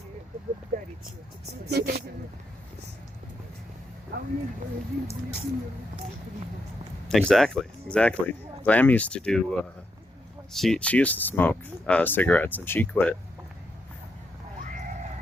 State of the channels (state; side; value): normal; both; correlation 0.81